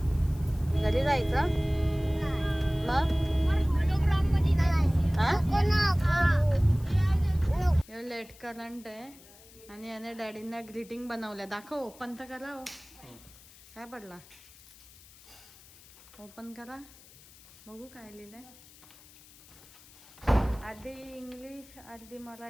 घरी जायचं मग. लेट करंट आहे आणि याने डॅडींना ग्रीटिंग बनवल्या. दाखव. ओपन तर करा. हो काय पडला. ओपन करा बघू काय लिहिलंय. अर्धी इंग्लिश अर्धी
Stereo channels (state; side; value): noise; left; hiss, 23 dB below the sound